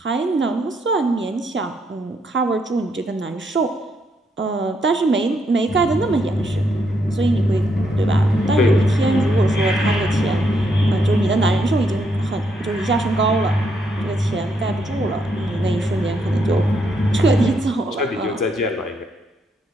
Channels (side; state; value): both; normal; correlation 0.76